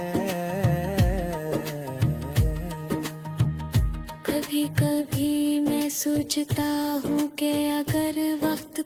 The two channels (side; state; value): both; identical; correlation 1.00